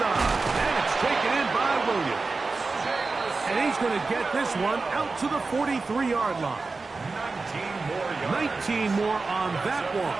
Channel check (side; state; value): left; quieter; 3.9 dB